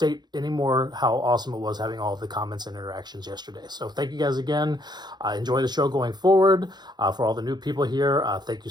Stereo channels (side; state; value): left; late; 0.21 ms